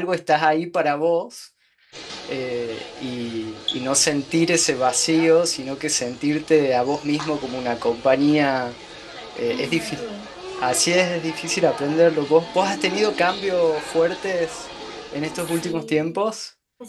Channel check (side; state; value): both; identical; correlation 1.00